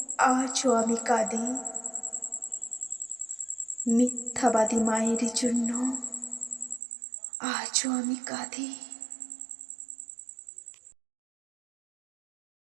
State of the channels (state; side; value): drops out; left; at 6.8 s